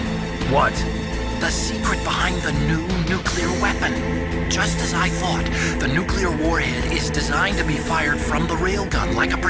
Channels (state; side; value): identical; both; correlation 1.00